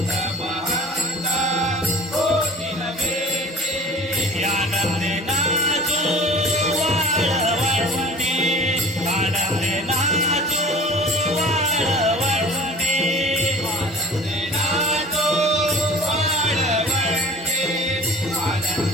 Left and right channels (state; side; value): normal; both; correlation 0.44